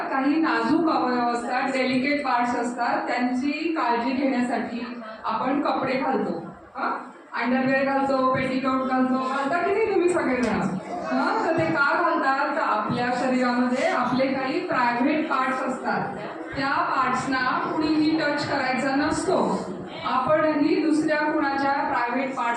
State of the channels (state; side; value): identical; both; correlation 1.00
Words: काही नाजूक अवयव असतात, डेलिकेट पार्ट्स असतात, त्यांची काळजी घेण्यासाठी आपण कपडे घालतो. अंडरवेअर घालतो, पेटीकोट घालता की नाही तुम्ही सगळेजण? तर ते का घालतात? तर आपल्या शरीरामध्ये आपले काही प्रायव्हेट पार्ट्स असतात, त्या पार्ट्सना कुणीही टच करायचा नसतो. आपणही दुसऱ्या कुणाच्या प्रायव्हेट